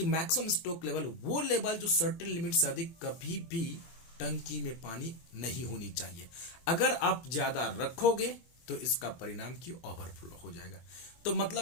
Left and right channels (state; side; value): late; right; 23 ms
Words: मैक्सिमम स्टॉक लेवल वो लेवल जो सर्टेन लिमिट से अधिक कभी भी टंकी में पानी नहीं होनी चाहिए। अगर आप ज्यादा रखोगे तो इसका परिणाम की ओवरफ्लो हो जाएगा। तो